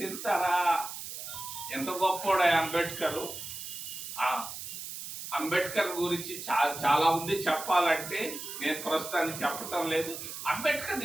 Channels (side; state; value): right; noise; hiss, 9 dB below the sound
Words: ఎంత గొప్పోడా అంబేద్కర్. అంబేద్కర్ గురించి చాలా ఉంది చెప్పాలంటే, నేను ప్రస్తుతానికి చెప్పటం లేదు. అంబేద్కర్